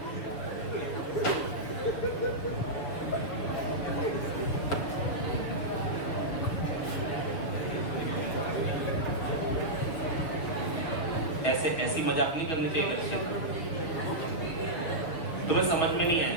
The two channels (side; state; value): right; late; 7.0 ms